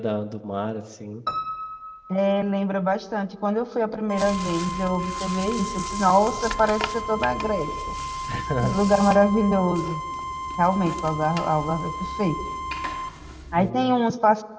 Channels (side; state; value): both; identical; correlation 1.00